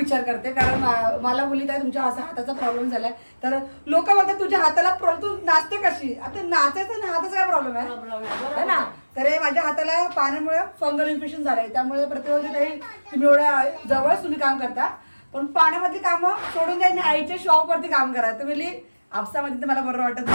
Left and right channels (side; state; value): both; inverted; correlation -1.00